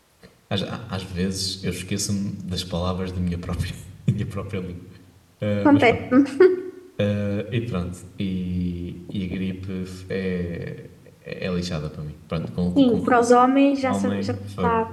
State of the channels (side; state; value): both; identical; correlation 1.00